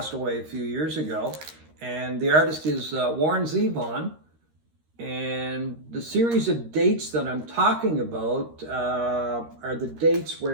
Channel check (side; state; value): left; late; 13 ms